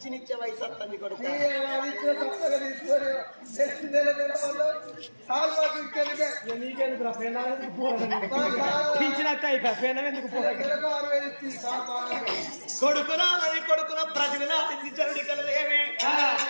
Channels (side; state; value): both; inverted; correlation -1.00